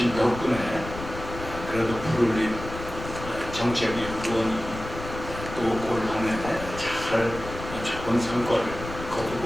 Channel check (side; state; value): left; noise; rumble, 10 dB below the sound